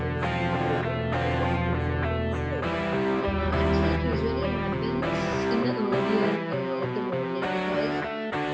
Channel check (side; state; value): both; identical; correlation 1.00